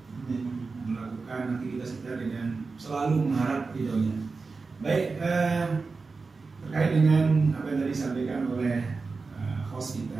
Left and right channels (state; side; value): quieter; left; 4.3 dB